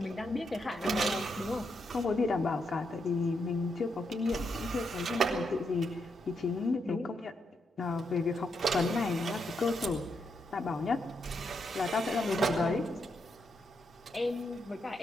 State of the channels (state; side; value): normal; both; correlation 0.80